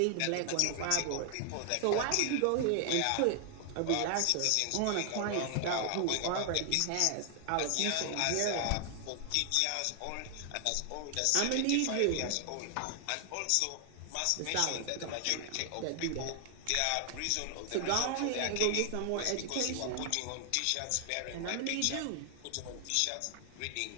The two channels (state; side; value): different; both; correlation 0.00